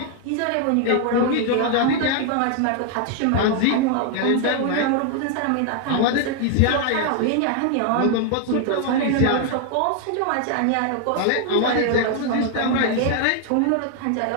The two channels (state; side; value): different; both; correlation 0.00